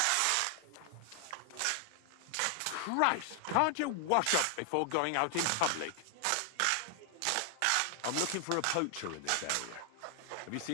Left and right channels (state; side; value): different; both; correlation 0.00